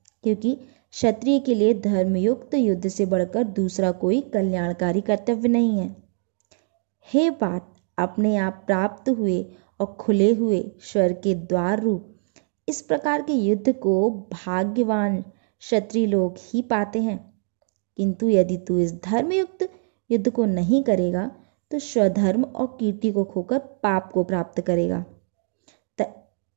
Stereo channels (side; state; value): left; silent; 63 dB below the other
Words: क्योंकि क्षत्रिय के लिए धर्मयुक्त युद्ध से बढ़कर दूसरा कोई कल्याणकारी कर्तव्य नहीं है। हे पार्थ, अपने आप प्राप्त हुए और खुले हुए स्वर्ग के द्वार रूप इस प्रकार के युद्ध को भाग्यवान क्षत्रिय लोग ही पाते हैं। किंतु यदि तू इस धर्मयुक्त युद्ध को नहीं करेगा तो स्वधर्म और कीर्ति को खोकर पाप को प्राप्त करेगा।